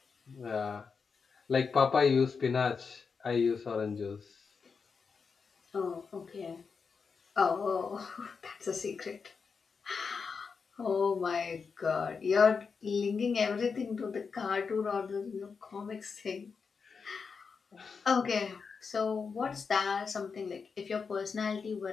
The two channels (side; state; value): right; quieter; 5.4 dB